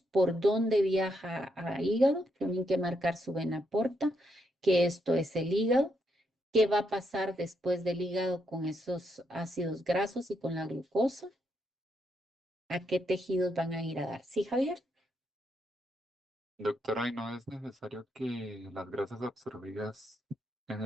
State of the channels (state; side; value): normal; both; correlation 0.79